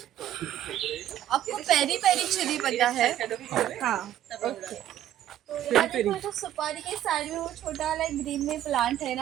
आपको पेरी पेरी चिली पता है? हाँ ओके तो यहाँ देखो जो सुपारी के साइड में वो छोटा वाला ग्रीन में प्लांट है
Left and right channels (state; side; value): quieter; left; 12.0 dB